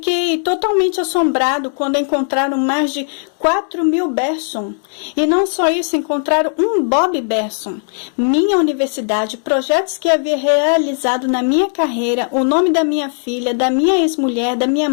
totalmente assombrado quando encontraram mais de 4.000 Berson. E não só isso, encontraram um Bob Berson. Minha universidade, projetos que havia realizado na minha carreira, o nome da minha filha, da minha ex-mulher, da minha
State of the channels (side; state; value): right; silent; digital silence